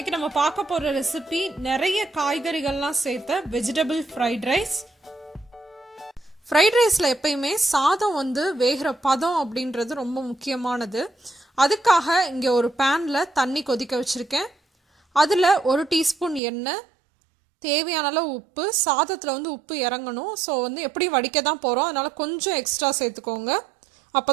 நம்ம பார்க்க போற ரெசிபி நிறைய காய்கறிகள்லாம் சேர்த்த வெஜிடபிள் ஃப்ரைட் ரைஸ். ஃப்ரைட் ரைஸில் எப்பயுமே சாதம் வேகிற பதம் அப்படின்றது ரொம்ப முக்கியமானது. அதுக்காக இங்கே ஒரு பேனில் தண்ணி கொதிக்க வச்சுருக்கேன். அதில் 1 டீஸ்பூன் எண்ணெய், தேவையான அளவு உப்பு. சாதத்தில் உப்பு இறங்கணும். ஸோ எப்படி வடிக்க தான் போகிறோம், அதனால் கொஞ்சம் எக்ஸ்ட்ரா சேர்த்துக்கோங்க. அப்போ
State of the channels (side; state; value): left; drops out; at 16.4 s